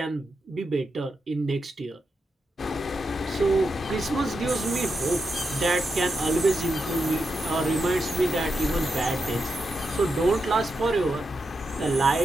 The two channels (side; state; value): both; normal; correlation 0.86